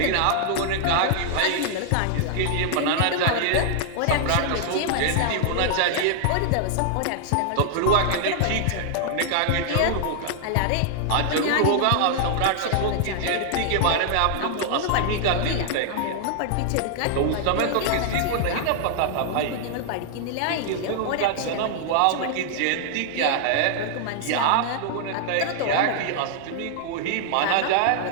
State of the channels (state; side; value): different; both; correlation -0.01